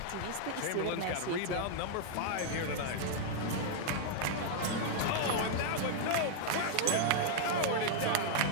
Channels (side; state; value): both; different; correlation -0.01